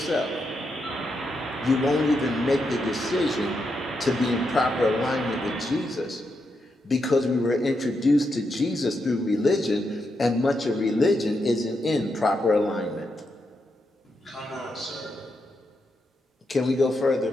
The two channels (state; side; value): normal; both; correlation 0.83